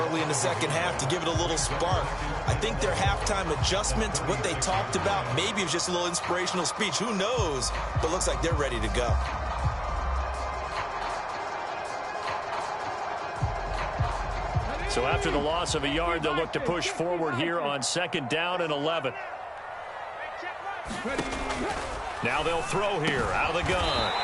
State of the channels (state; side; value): identical; both; correlation 1.00